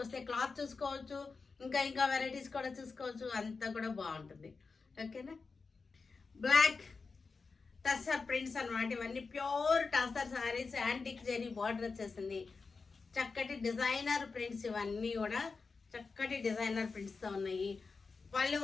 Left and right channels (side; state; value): right; quieter; 4.5 dB